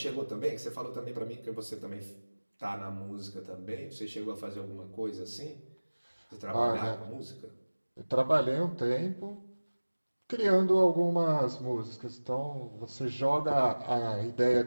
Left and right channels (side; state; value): both; inverted; correlation -1.00